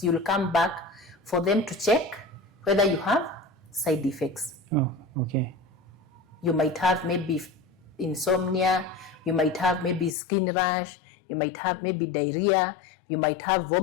you'll come back for them to check whether you have side effects. Okay. You might have maybe insomnia, you might have maybe skin rash, you might have maybe diarrhea, you might have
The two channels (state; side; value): drops out; right; at 10.2 s